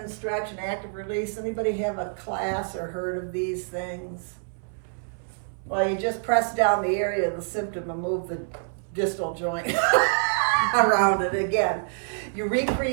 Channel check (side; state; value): left; silent; 61 dB below the other